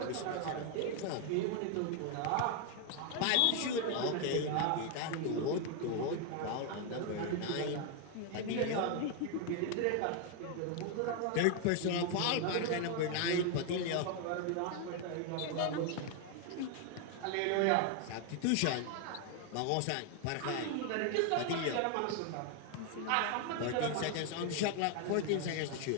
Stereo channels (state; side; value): different; both; correlation 0.01